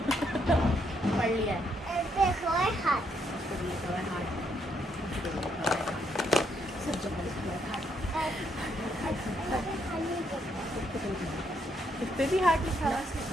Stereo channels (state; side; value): normal; both; correlation 0.74